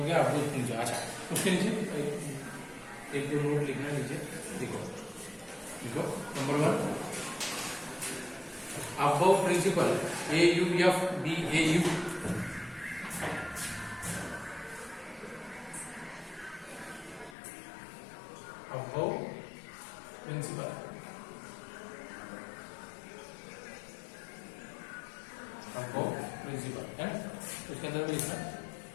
गया अबव प्रिंसिपल। अच्छा उसके नीचे एक दो नोट लिखना नीचे, देखो देखो number 1 Aufbau principle AUFBAU, Aufbau principle, Aufbau principle है, उसके अंदर में लिखना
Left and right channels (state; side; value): drops out; right; at 17.4 s